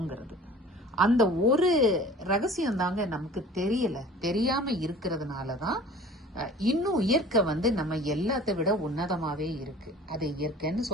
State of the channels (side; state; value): both; normal; correlation 0.44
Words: அந்த ஒரு ரகசியம் தாங்க நமக்கு தெரியாம இருக்கிறதுனாலதான் இன்னும் இயற்கை நம்ம எல்லாத்தை விட உன்னதமாவே இருக்கு. அது இயற்கைன்னு